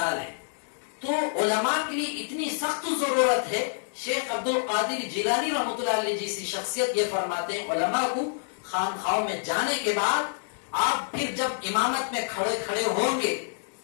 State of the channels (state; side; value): silent; right; digital silence